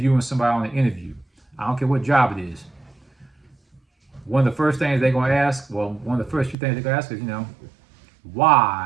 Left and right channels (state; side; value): drops out; left; at 6.6 s